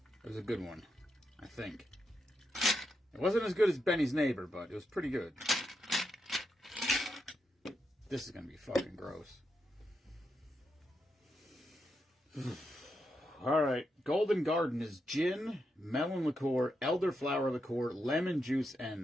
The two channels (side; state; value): both; normal; correlation 0.84